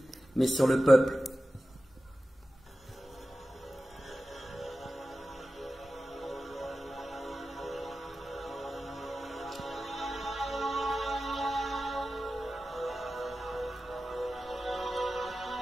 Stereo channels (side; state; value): both; normal; correlation 0.94